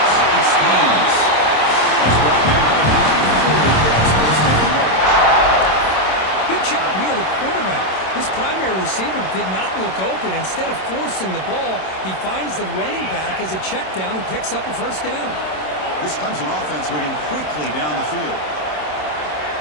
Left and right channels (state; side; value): late; right; 27 ms